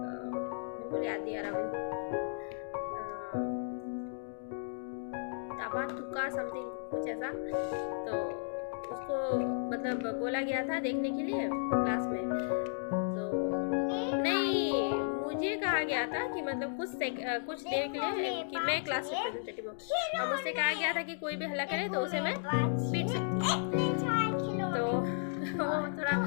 याद नहीं आ रहा मुझे, ताबा तुका समथिंग कुछ ऐसा। तो उसको मतलब बोला गया था देखने के लिए क्लास में, तो नहीं, मुझे कहा गया था कि मतलब कुछ देर के लिए कि मैं क्लास रिप्रेजेंटेटिव हूँ, और मुझसे कहा गया था कि कोई भी हल्ला करे तो उसे मैं पीट सकती हूँ। तो वो थोड़ा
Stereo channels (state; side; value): silent; right; digital silence